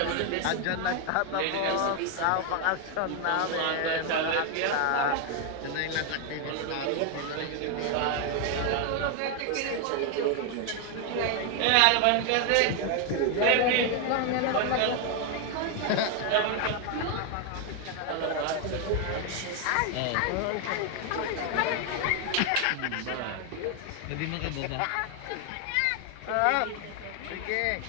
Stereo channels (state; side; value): different; both; correlation 0.01